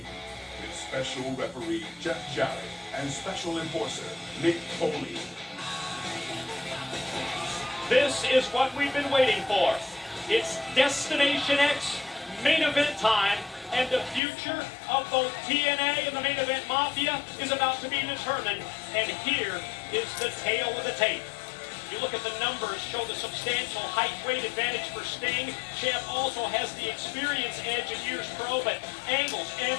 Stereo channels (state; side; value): drops out; right; at 14.2 s